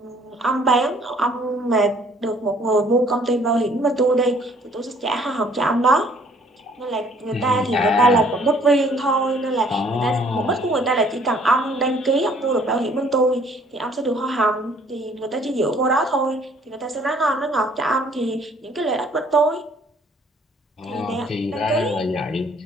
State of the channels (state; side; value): normal; both; correlation 0.60